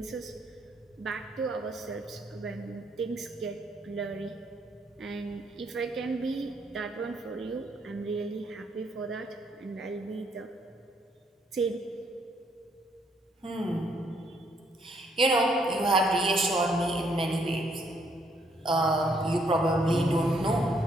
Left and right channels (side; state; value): both; normal; correlation 0.70